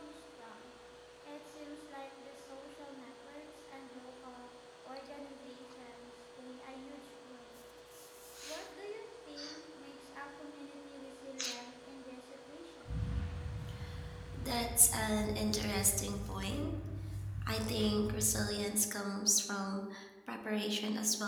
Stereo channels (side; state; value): both; identical; correlation 1.00